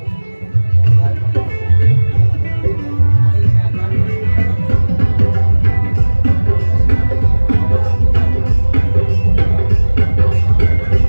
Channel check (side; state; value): both; inverted; correlation -1.00